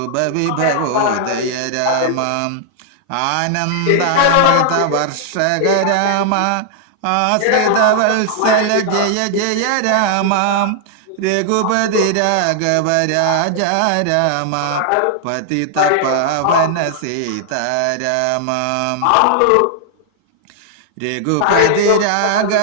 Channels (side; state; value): both; different; correlation 0.00